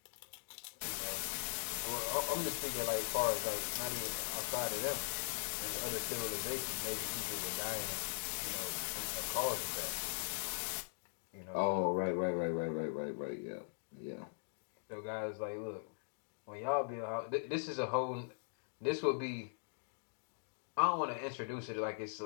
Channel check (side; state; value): right; silent; digital silence